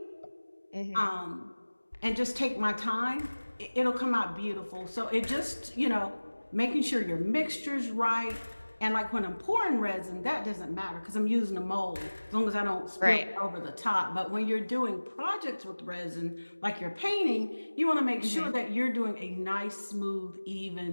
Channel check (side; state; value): both; inverted; correlation -1.00